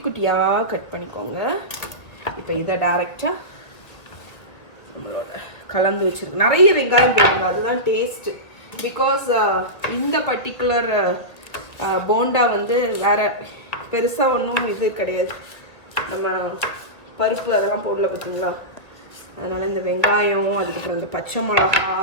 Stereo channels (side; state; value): right; late; 1.7 ms